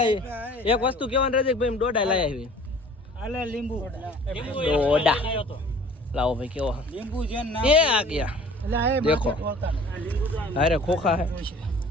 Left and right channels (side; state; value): both; normal; correlation 0.48